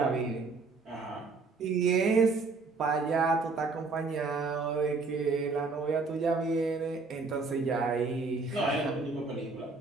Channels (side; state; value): left; quieter; 4.1 dB